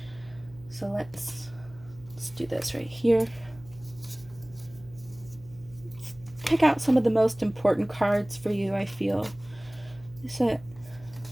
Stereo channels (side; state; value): right; noise; hum, 22 dB below the sound